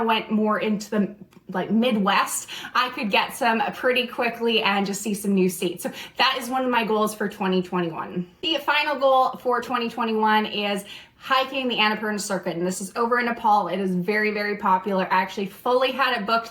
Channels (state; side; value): identical; both; correlation 1.00